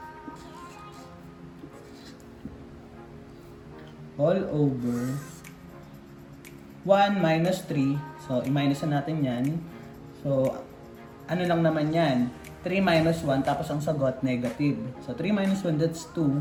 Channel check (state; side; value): identical; both; correlation 1.00